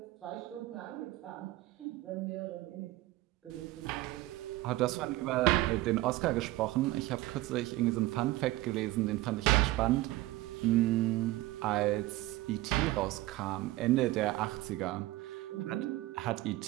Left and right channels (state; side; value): quieter; left; 17.7 dB